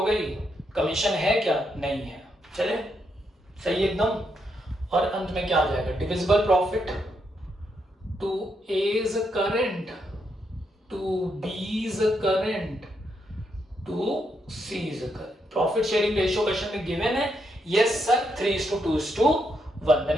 गई, कमीशन है क्या? नहीं है, चले सही एकदम। और अंत में क्या आ जाएगा? Divisible profit to A's current, to B's current, to C's current. Profit sharing ratio question में गिवन है। Yes sir, 3:2:1।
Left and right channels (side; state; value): both; normal; correlation 0.79